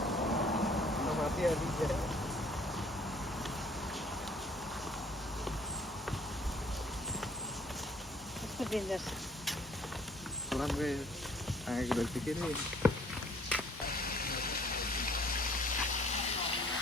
कस्तो डेन्जर छ। राम्रै आएको रहेछ के अरे।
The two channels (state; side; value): normal; both; correlation 0.58